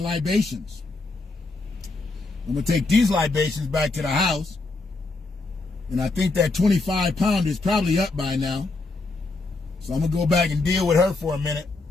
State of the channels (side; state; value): right; quieter; 3.4 dB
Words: I'm going to take these libations back to the house. And I think that 25-pounder is probably up by now. So I'm going to go back and deal with her for a minute.